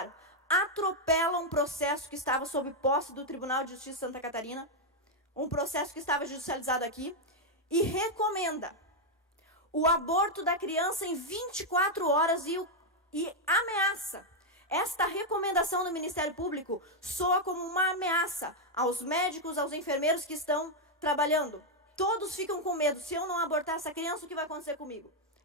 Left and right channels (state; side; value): normal; both; correlation 0.00